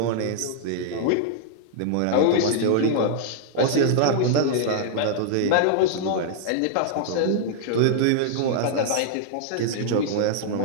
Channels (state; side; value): different; both; correlation -0.01